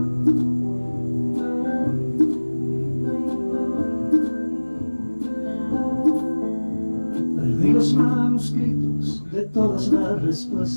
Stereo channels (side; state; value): both; inverted; correlation -1.00